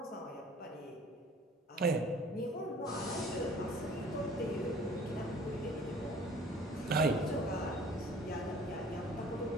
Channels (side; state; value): both; normal; correlation 0.50